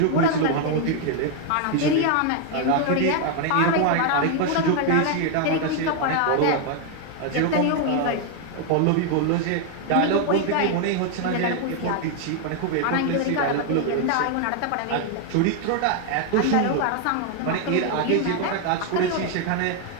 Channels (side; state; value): both; different; correlation 0.00